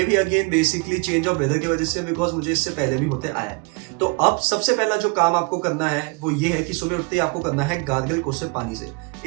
भी again basically change of weather की वजह से, बिकॉज मुझे इससे पहले भी होते आया है। तो अब सबसे पहला जो काम आपको करना है वो ये है कि सुबह उठते ही आपको करना है गार्गल कोसे पानी से।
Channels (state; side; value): quieter; left; 30.9 dB